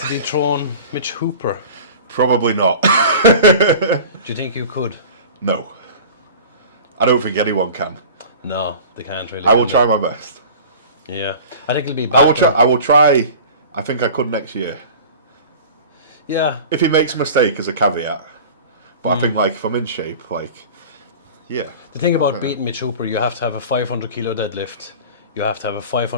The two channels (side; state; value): both; inverted; correlation -0.39